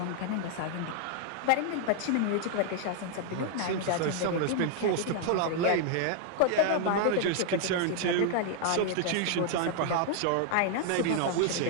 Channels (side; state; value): both; different; correlation 0.00